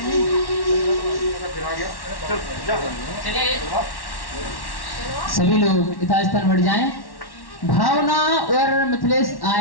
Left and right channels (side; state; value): right; late; 1.1 ms